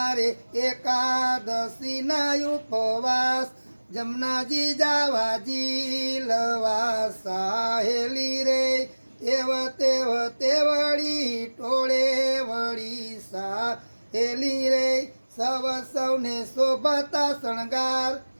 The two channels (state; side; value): inverted; both; correlation -1.00